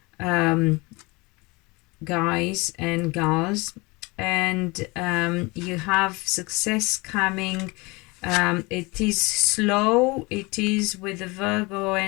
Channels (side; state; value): right; quieter; 25.5 dB